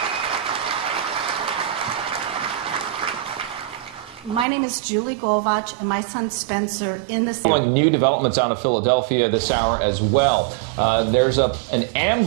My name is Julie Golvach, and my son Spencer in the Following new developments out of Philadelphia this hour as well. There's an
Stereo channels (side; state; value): left; drops out; at 4.5 s